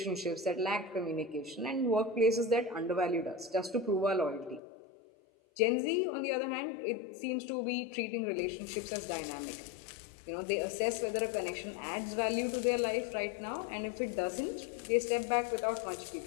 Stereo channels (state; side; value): drops out; right; at 4.6 s